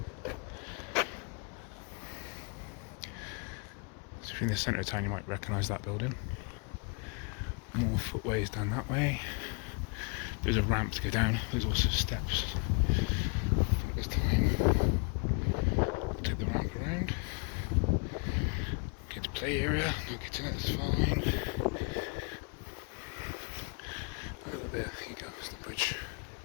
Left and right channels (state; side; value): quieter; right; 33.8 dB